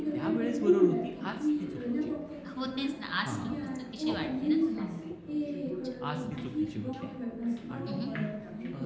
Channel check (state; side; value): identical; both; correlation 1.00